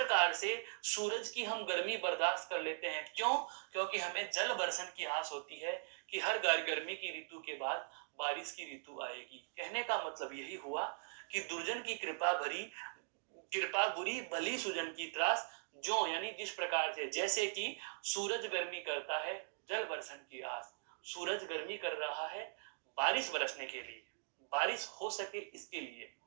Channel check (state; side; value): silent; left; digital silence